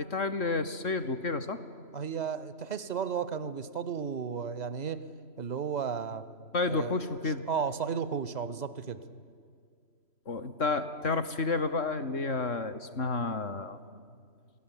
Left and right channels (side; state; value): right; late; 3.0 ms